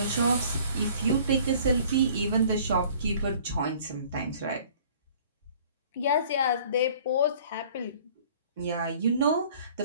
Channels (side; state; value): both; inverted; correlation -0.52